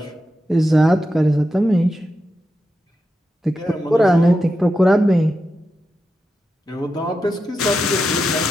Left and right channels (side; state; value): both; normal; correlation 0.88